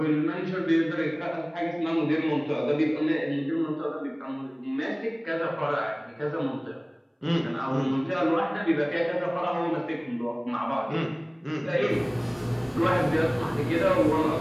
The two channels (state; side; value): identical; both; correlation 1.00